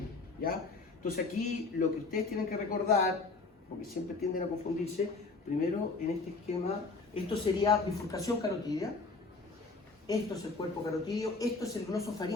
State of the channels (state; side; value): quieter; right; 3.9 dB